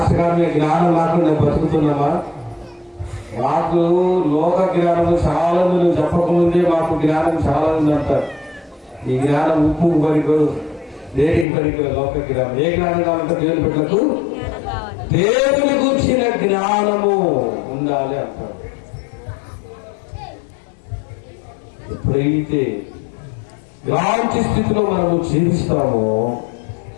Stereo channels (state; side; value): drops out; right; at 11.5 s